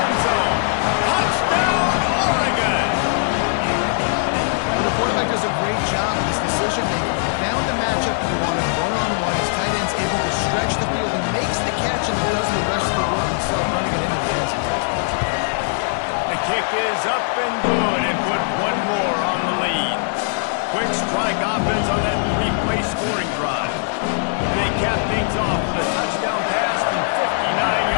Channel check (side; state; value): right; silent; digital silence